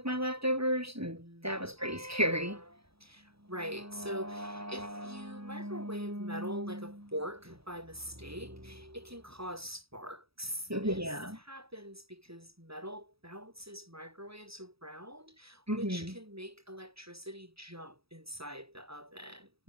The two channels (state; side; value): late; left; 0.77 ms